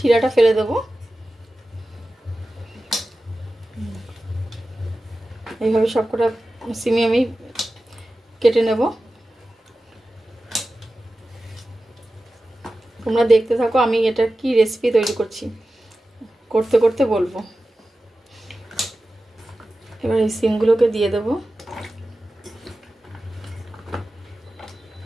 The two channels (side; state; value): both; normal; correlation 0.94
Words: ফেলে দেবো। এইভাবে সবকটা সিমই আমি কেটে নেব। তোমরা দেখতে থাকো আমি এটা কি রেসিপি তৈরি করছি, করতে করতে বলবো। এবার এই সিমগুলোকে দিয়ে দেবো।